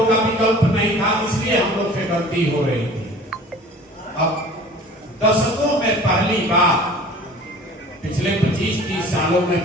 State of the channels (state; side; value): normal; both; correlation 0.45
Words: का विकल्प नहीं था, इसलिए हम लोग से गलती हो रही थी। अब दशकों में पहली बार, पिछले 25-30 सालों में